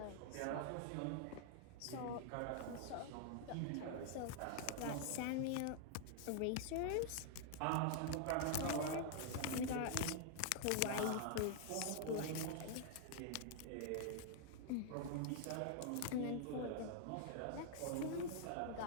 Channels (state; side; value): different; both; correlation 0.00